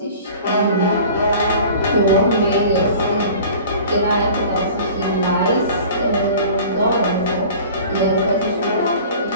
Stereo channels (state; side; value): inverted; both; correlation -0.43